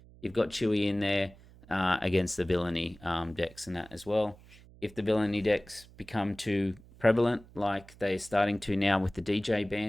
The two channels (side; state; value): right; noise; hum, 23 dB below the sound